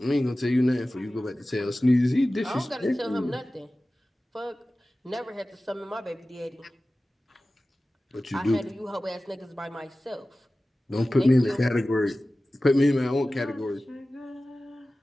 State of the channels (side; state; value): both; normal; correlation 0.96